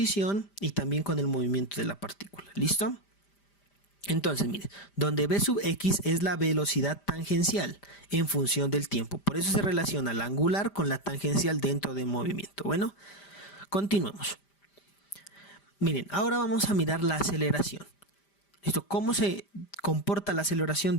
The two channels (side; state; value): right; late; 5.0 ms